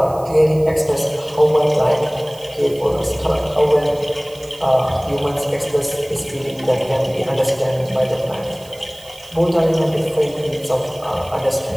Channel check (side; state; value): right; noise; hiss, 22 dB below the sound